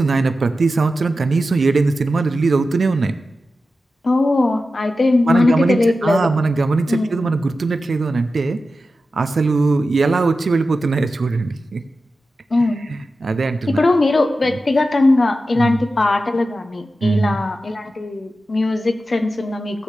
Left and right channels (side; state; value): both; normal; correlation 0.92